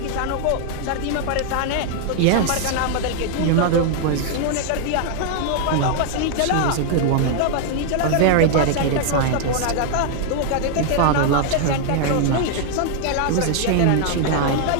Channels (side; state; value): both; different; correlation 0.00